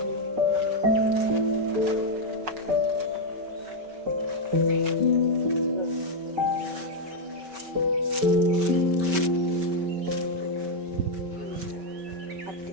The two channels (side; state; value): left; late; 5.1 ms